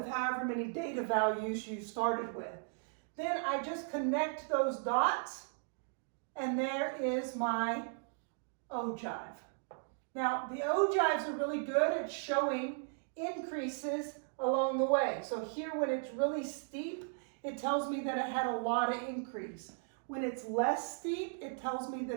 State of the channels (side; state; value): left; silent; digital silence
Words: however many data values you started with. Then I just connect those dots, and there is my ogive. Now, the ogives are really good at showing increases along the way. So here, when it's really steep, it tells me that it had a lot of increase. When it's less steep, it tells me